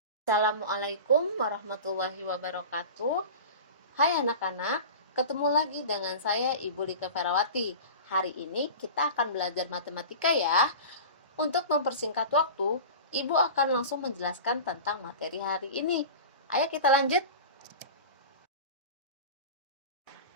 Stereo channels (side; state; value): both; inverted; correlation -0.33